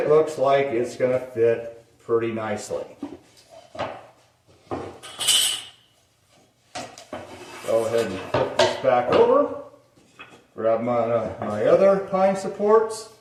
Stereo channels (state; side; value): identical; both; correlation 1.00